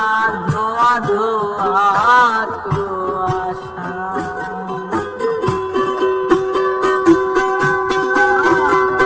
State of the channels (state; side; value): identical; both; correlation 1.00